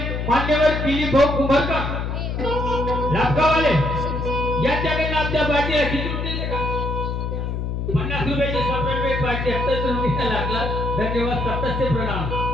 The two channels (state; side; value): noise; left; hum, 2 dB below the sound